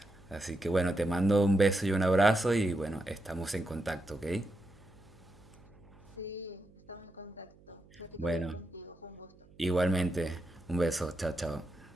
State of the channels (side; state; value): right; noise; hum, 26 dB below the sound